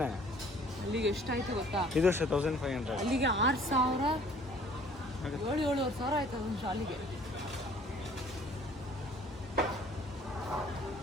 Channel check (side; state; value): both; normal; correlation 0.54